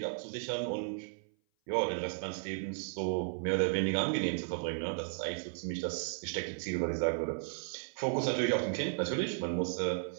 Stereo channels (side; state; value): left; silent; 55 dB below the other